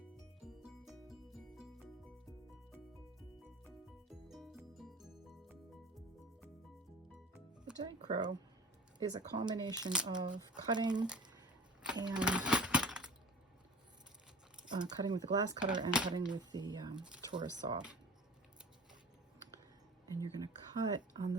The dichro is a combination of cutting and cutting with the glass cutter and cutting with the Taurus saw. And you're going to cut on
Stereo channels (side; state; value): both; normal; correlation 0.40